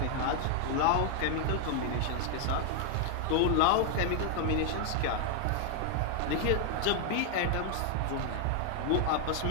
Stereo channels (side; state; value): both; different; correlation 0.00